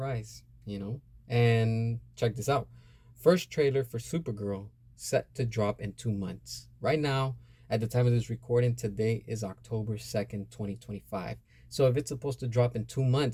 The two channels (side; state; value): both; identical; correlation 1.00